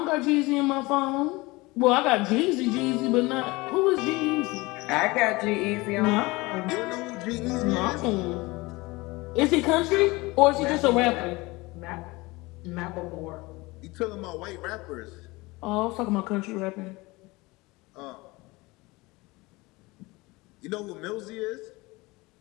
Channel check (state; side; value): quieter; right; 22.6 dB